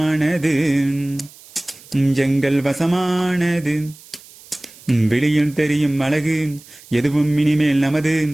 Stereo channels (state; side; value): noise; right; hiss, 22 dB below the sound